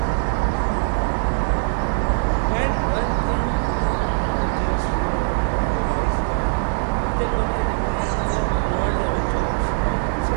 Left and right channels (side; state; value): left; silent; 62 dB below the other